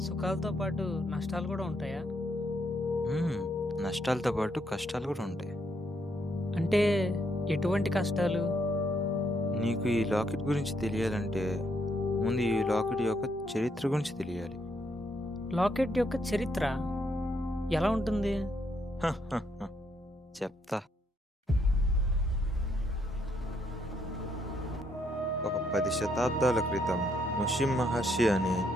సుఖాలతో పాటు నష్టాలు కూడా ఉంటాయా? హ్మ్. నష్టాలతో పాటు కష్టాలు గూడా ఉంటాయి. అంటే ఎటువంటి కష్టాలు? నీకు ఈ లాకెట్ గురించి తెలియాలంటే, ముందు ఈ లాకెట్ యొక్క చరిత్ర గురించి తెలియాలి. లాకెట్ యొక్క చరిత్ర ఎలా ఉంటుంది? చెప్తా. ఒక 10 శతాబ్దాల క్రితం ముషిం మహర్షి అని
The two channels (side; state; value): both; normal; correlation 0.74